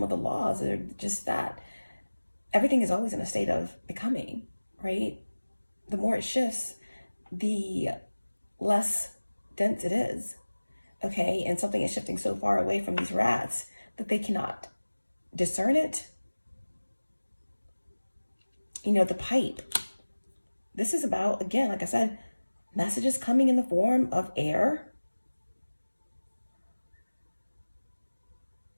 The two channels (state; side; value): inverted; both; correlation -1.00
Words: of the laws are just that everything is always in a state of becoming, right? The more it shifts, the less dense it is, okay? And something is shifting so far away from these rats that they cannot discern it. You know, the pipe. This is about, again, like I said, messages coming in the form of air.